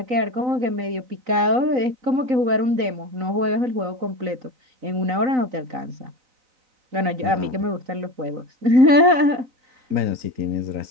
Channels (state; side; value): late; left; 3.9 ms